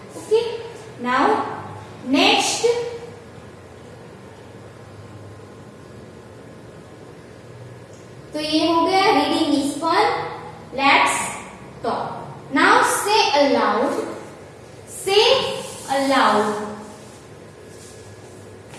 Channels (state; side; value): identical; both; correlation 1.00